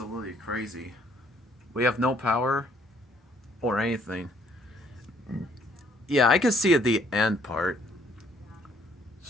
crazy. We have no power or anything. Yeah, I can see at the end part.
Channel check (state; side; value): normal; both; correlation 0.64